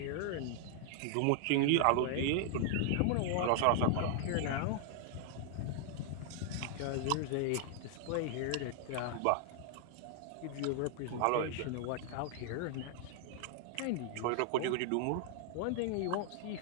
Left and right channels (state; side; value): different; both; correlation 0.00